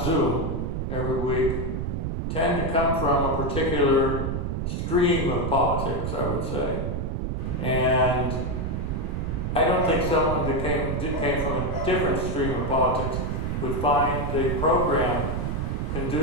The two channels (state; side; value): noise; right; rumble, 1 dB below the sound